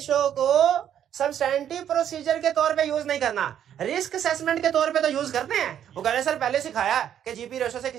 को सब्सटैंटिव प्रोसीजर के तौर पे यूज नहीं करना, रिस्क असेसमेंट के तौर पे तो यूज करते हैं। वो कह रहे सर पहले सिखाया कि जीपी रेशो से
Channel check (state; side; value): quieter; left; 9.9 dB